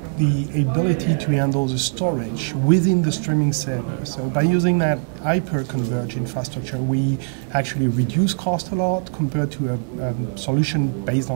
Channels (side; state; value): left; silent; 58 dB below the other